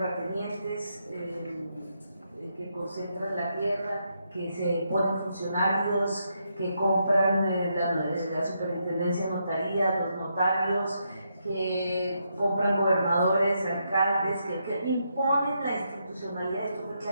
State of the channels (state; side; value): inverted; both; correlation -0.80